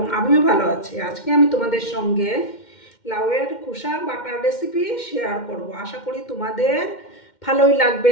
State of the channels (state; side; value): late; right; 2.1 ms